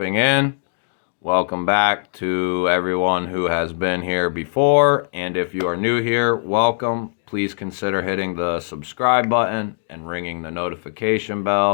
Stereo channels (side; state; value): right; silent; digital silence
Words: in. Welcome back to everyone who has been here before. And if you are new here, welcome. Please consider hitting the subscribe button and ringing the notification